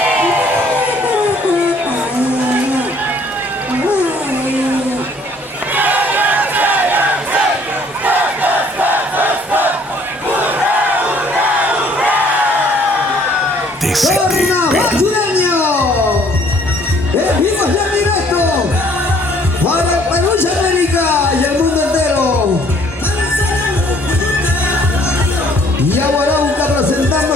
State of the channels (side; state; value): both; normal; correlation 0.60